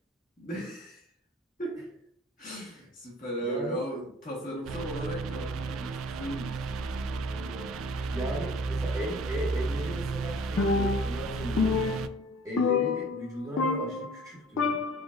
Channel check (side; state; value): both; normal; correlation 0.50